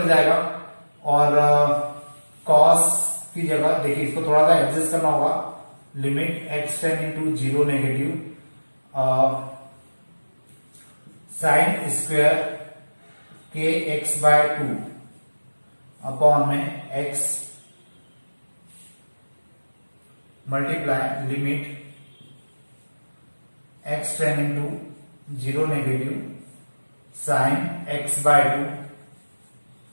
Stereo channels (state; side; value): inverted; both; correlation -1.00